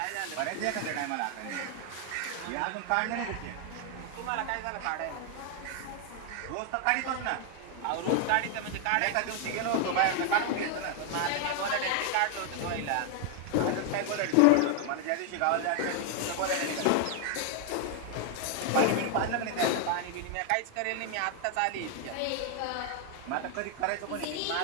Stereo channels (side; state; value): both; different; correlation 0.00